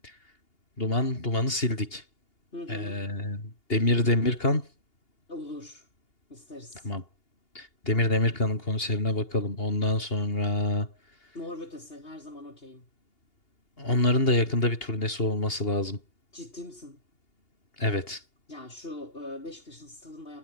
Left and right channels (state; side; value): late; right; 2.8 ms